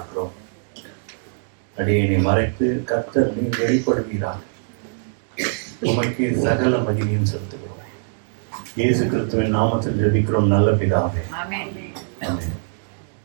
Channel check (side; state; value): left; silent; digital silence